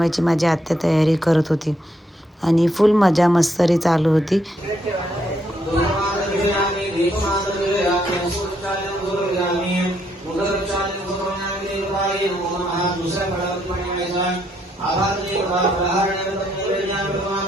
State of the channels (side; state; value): both; normal; correlation 0.74